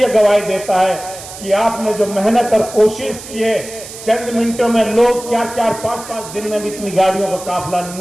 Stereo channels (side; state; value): right; noise; hiss, 13 dB below the sound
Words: गवाही देता है कि आपने जो मेहनत और कोशिश की है, चंद मिनटों में लोग 4-4, 5-5 दिन में भी इतनी गाड़ियों का काफिला